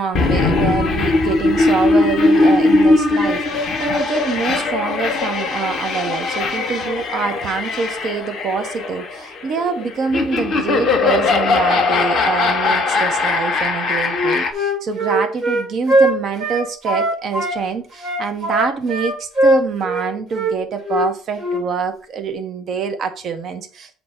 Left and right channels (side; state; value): both; normal; correlation 0.65